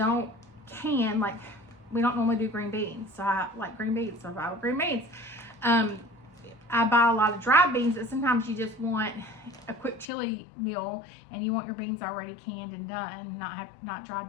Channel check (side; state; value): right; drops out; at 10.1 s